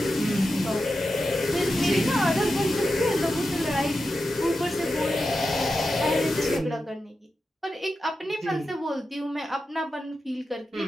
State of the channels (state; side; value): normal; both; correlation 0.90